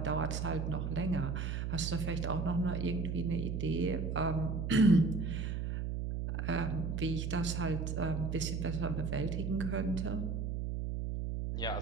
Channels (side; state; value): right; noise; hum, 2 dB below the sound